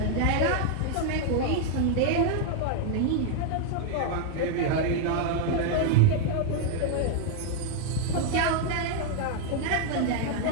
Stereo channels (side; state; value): both; different; correlation 0.00